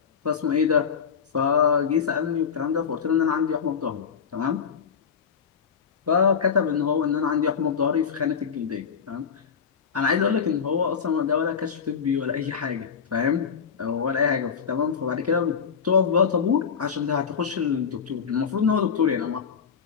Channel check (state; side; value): quieter; right; 6.6 dB